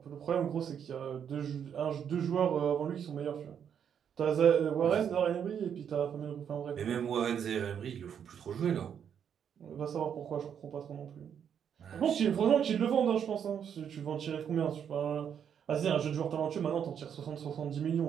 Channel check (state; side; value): quieter; left; 8.2 dB